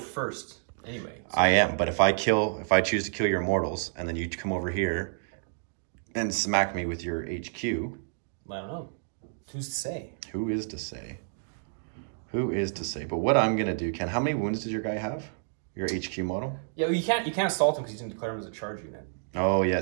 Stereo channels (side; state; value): left; silent; digital silence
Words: anyway. So. I am, but if I choose to kill your Immortals, and then you come over here and smack me with your HQ. I don't know. Who's to say? Who is to say? Who is to say? But what I'm gonna do, Ken, how many wounds does your guy have? Your HQ model? Yeah, well, you can't assault him because he's gonna declare him as a charge unit. Oh